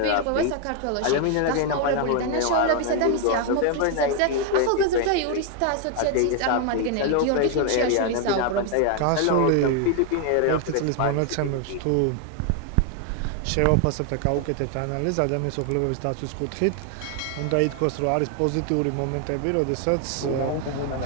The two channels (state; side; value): different; both; correlation 0.00